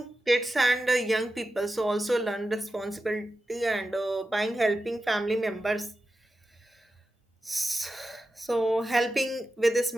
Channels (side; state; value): both; normal; correlation 0.91